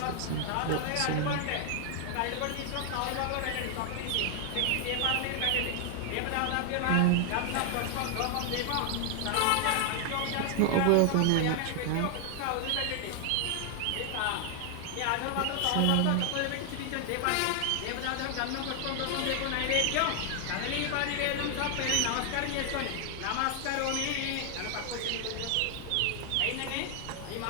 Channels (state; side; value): different; both; correlation 0.00